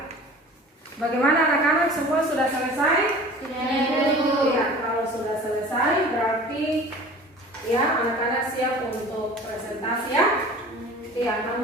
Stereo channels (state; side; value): normal; both; correlation 0.42